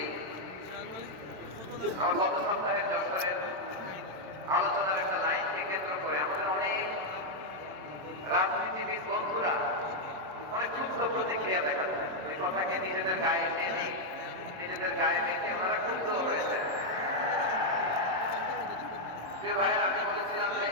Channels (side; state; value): left; late; 27 ms